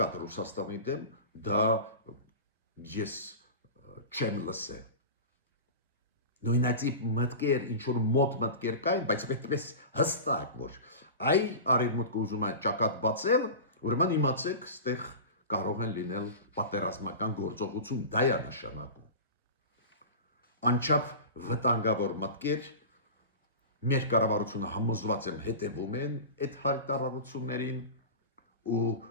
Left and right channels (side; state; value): both; inverted; correlation -0.31